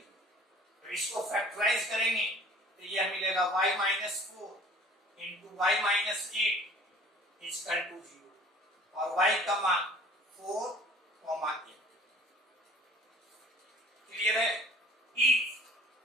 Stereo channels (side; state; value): both; normal; correlation 0.49